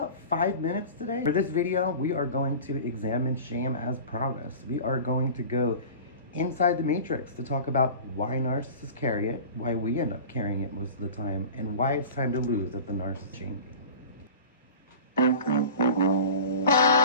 5 minutes today. For this video, we are going to examine shame as promised. We are going to go inside the matrix to talk about why narcissists carry it, why we end up carrying it most of the time, and why it's time to lose at the narcissist shame game.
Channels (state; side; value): inverted; both; correlation -0.37